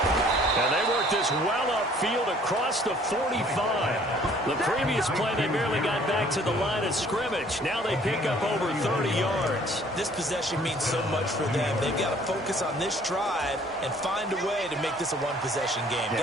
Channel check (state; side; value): normal; both; correlation 0.57